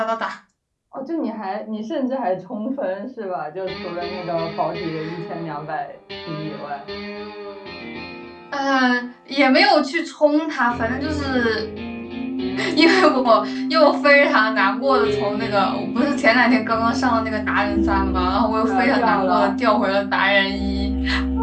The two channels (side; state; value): both; identical; correlation 1.00